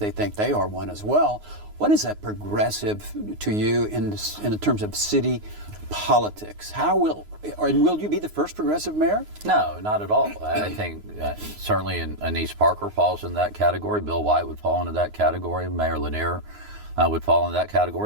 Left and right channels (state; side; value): late; left; 9.6 ms